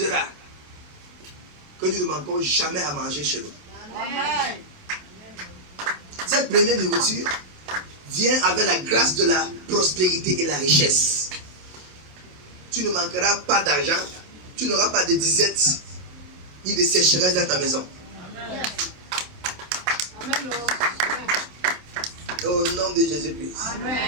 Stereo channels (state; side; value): late; left; 27 ms